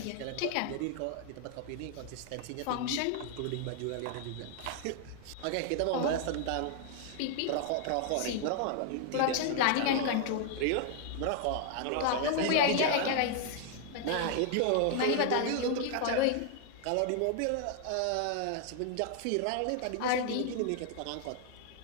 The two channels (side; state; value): both; different; correlation 0.00